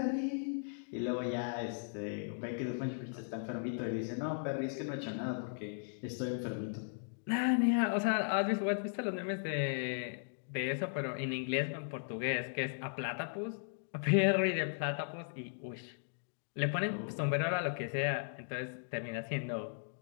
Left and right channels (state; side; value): silent; right; digital silence